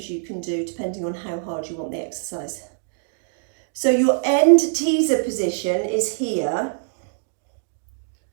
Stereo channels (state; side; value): silent; left; digital silence